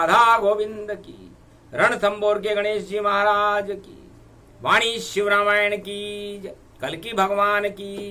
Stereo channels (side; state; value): both; identical; correlation 1.00